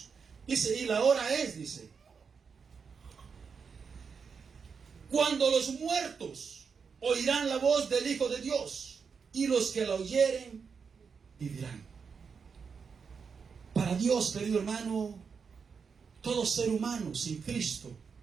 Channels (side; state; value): left; quieter; 5.9 dB